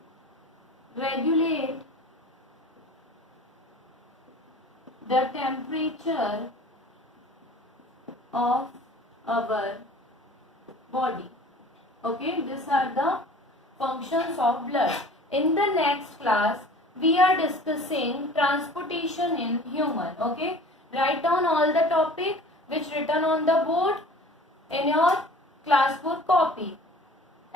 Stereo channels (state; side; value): normal; both; correlation 0.44